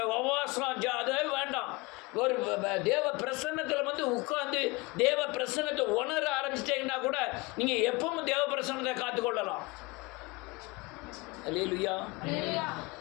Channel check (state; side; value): quieter; right; 24.6 dB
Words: உபவாசம் அதே வேண்டாம். ஒரு தேவ பிரசன்னத்தில் உட்கார்ந்து தேவ பிரசன்னத்தை உணர ஆரம்பிச்சிட்டீங்கன்னா கூட நீங்கள் எப்பவும் தேவ பிரசன்னத்தை காத்துக்கொள்ளலாம். அல்லேலூயா. அல்லேலூயா.